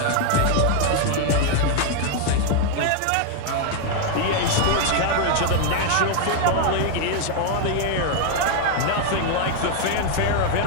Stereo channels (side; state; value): both; different; correlation 0.00